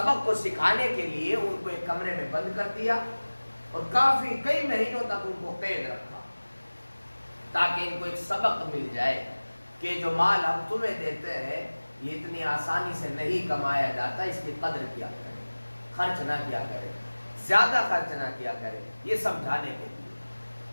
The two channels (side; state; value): both; inverted; correlation -1.00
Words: کو سکھانے کے لیے ان کو ایک کمرے میں بند کر دیا اور کئی مہینوں تک ان کو قید رکھا تاکہ ان کو ایک سبق مل جائے کہ جو مال ہم تمہیں دیتے ہیں یہ اتنی آسانی سے نہیں کمایا جاتا، اس کی قدر کیا کرے، خرچ نہ کیا کرے، زیادہ خرچ نہ کیا کرے، یہ سمجھانے کے لیے.